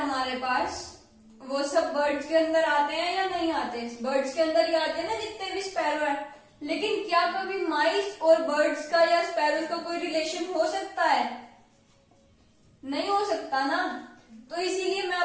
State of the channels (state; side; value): identical; both; correlation 1.00